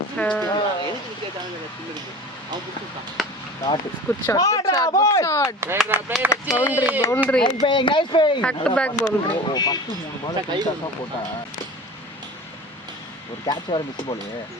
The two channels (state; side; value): normal; both; correlation 0.36